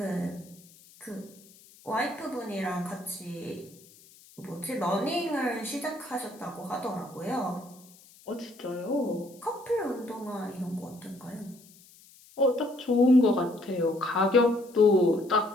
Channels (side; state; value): left; noise; hiss, 25 dB below the sound